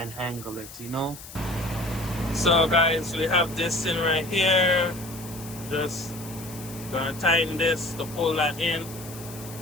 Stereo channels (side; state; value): left; noise; hiss, 15 dB below the sound